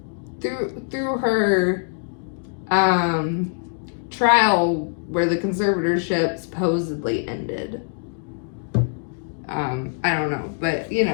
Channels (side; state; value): right; silent; digital silence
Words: through her trial where the conservatorship supposedly ended. I don't know, but